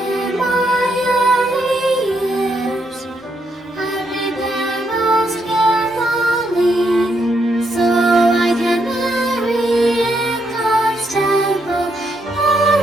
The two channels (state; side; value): normal; both; correlation 0.77